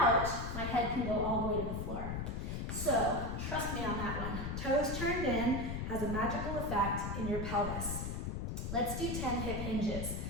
my head can go all the way to the floor. So trust me on that one. Toes turned in has a magical effect in your pelvis. Let's do 10 hip hinges.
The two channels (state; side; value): noise; left; rumble, 3 dB below the sound